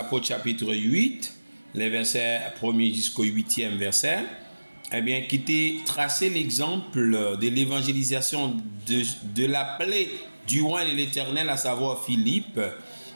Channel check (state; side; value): inverted; both; correlation -1.00